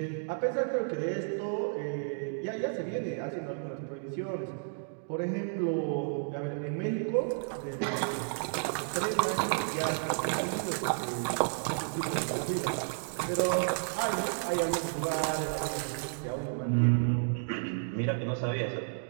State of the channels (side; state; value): left; silent; digital silence